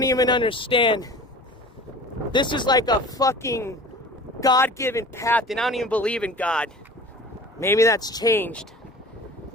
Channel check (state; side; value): normal; both; correlation 0.40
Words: even understand. This is like a fucking God-given path, and I don't even believe in God. Maybe that's changed.